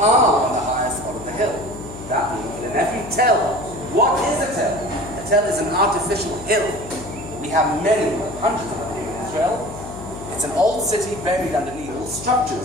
on the highest spot of the hill. That means that in every tell, what is a tell? A tell is an artificial hill. We have many, hundreds of them here in Israel. It's an old city buried underneath all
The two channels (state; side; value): noise; left; hum, 13 dB below the sound